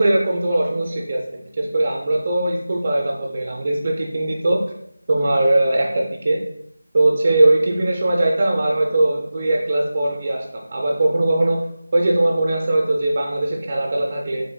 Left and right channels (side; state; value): both; inverted; correlation -0.95